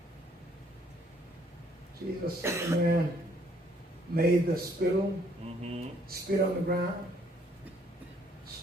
Jesus said, the man made the spittle, Mm-hmm. spit on the ground,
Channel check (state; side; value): normal; both; correlation 0.65